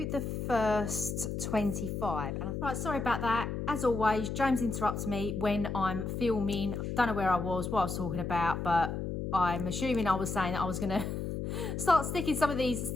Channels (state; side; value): noise; left; hum, 3 dB below the sound